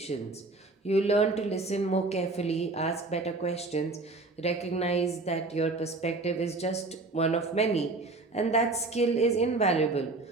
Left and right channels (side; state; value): left; quieter; 3.3 dB